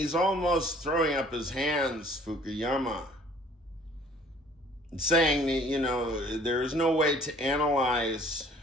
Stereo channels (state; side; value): normal; both; correlation 0.54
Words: almost throwing up his hands, Fukuyama, saying that, there is no way to analyze